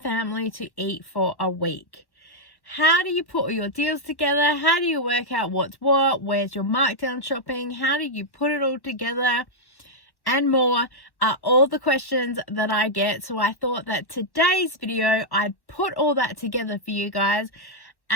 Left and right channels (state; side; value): late; right; 1.1 ms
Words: to eat for a week? How do you put all your deals together? How do you work out what's what? Where's your markdown shopping? How do you put it all together? And more are all the questions that I get. So I thought that today's video, I'd put all that together for you guys